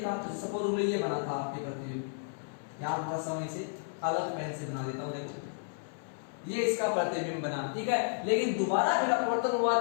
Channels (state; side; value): silent; right; 56 dB below the other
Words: तो सपोज ये बना था आपके प्रतिबिंब, यहां थोड़ा सा मैं इसे अलग पेन से बना देता हूं, देखो ये इसका प्रतिबिंब बना, ठीक है। लेकिन दोबारा फिर अपवर्तन हुआ